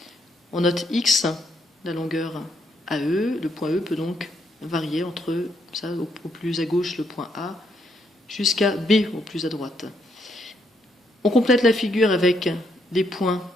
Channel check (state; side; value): normal; both; correlation 0.75